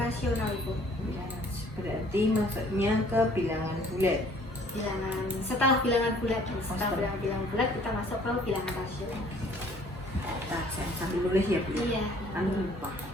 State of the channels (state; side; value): normal; both; correlation 0.57